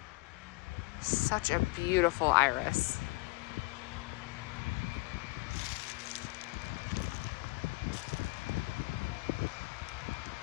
Such a beautiful iris.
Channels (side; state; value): right; quieter; 24.6 dB